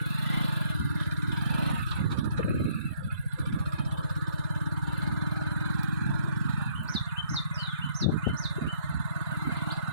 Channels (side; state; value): both; inverted; correlation -0.66